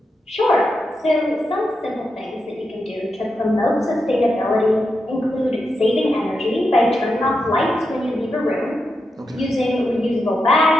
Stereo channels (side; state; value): both; normal; correlation 0.86